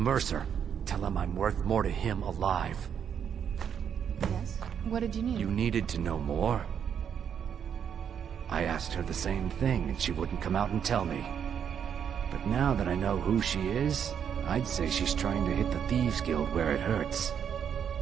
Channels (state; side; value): quieter; left; 8.1 dB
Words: tell him I'm worth more to him alive. Yes? What did you need? You needed to know more? I asked her the same thing, and she wouldn't come out and tell me. But now that I know who she is, I'd say she's trying to hit the Thieves Guild where it hurts.